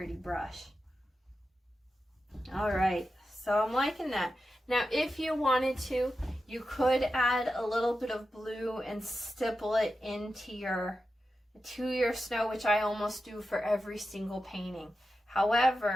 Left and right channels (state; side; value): normal; both; correlation 0.91